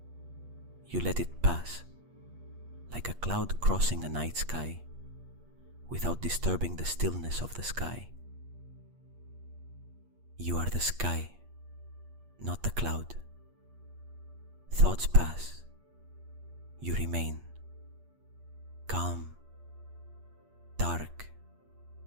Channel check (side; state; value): left; late; 8.5 ms